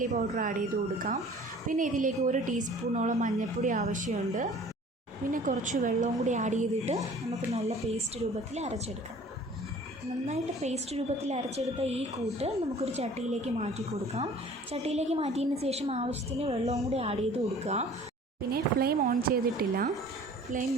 പൗഡർ ആഡ് ചെയ്ത് കൊടുക്കാം. പിന്നെ ഇതിലേക്ക് 1 ടീസ്പൂണോളം മഞ്ഞൾപ്പൊടി ആവശ്യമുണ്ട്. പിന്നെ കുറച്ച് വെള്ളവും കൂടി ആഡ് ചെയ്തിട്ട് നമുക്ക് നല്ല പേസ്റ്റ് രൂപത്തിൽ അരച്ചെടുക്കാം. നന്നായിട്ട് പേസ്റ്റ് രൂപത്തിൽ അരച്ചെടുത്ത ഈ കൂട്ട് നമുക്കൊരു ചട്ടിയിലേക്ക് മാറ്റി കൊടുക്കാം. ചട്ടിയിലേക്ക് മാറ്റിയതിന് ശേഷം ആവശ്യത്തിന് വെള്ളവും കൂടി ആഡ് ചെയ്ത് കൊടുക്കുക. പിന്നെ ഫ്ലെയിം ഓൺ ചെയ്തിട്ടില്ല.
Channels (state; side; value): normal; both; correlation 0.48